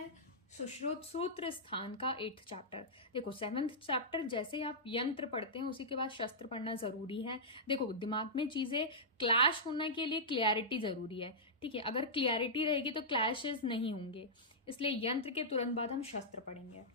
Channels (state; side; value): normal; both; correlation -0.12